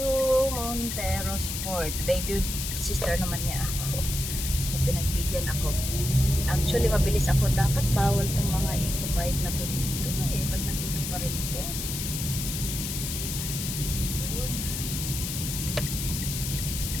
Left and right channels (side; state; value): left; noise; hiss, 4 dB below the sound